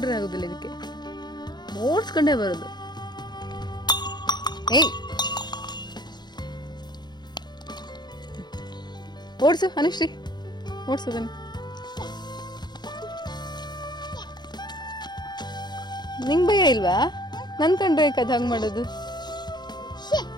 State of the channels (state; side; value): late; right; 0.21 ms